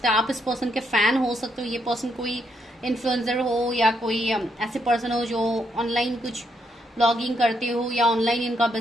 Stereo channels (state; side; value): normal; both; correlation 0.77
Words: है। आप इस पर्सन के फ़ैन हो सकते हो, ये पर्सन कोई इन्फ्लुएंसर हो, या कोई ऐसे पर्सन हो जो ऑनलाइन कुछ ब्लॉगिंग करते हो, या ऑनलाइन इनका